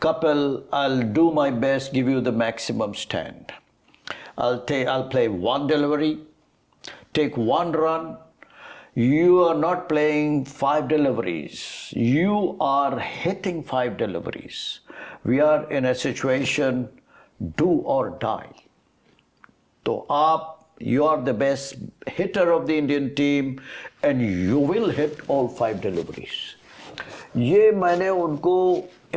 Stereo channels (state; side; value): identical; both; correlation 1.00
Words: I'll do my best, give you the maximum stand. I'll play one delivery, take one run. You are not playing 5 deliveries. You are hitting 5 deliveries. We are in a situation, do or die. So you are the best hitter of the Indian team and you will hit all 5 deliveries. ये मैंने उनको